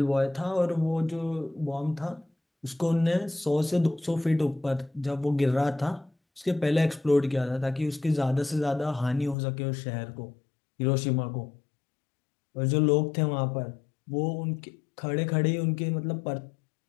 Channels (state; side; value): drops out; right; at 9.3 s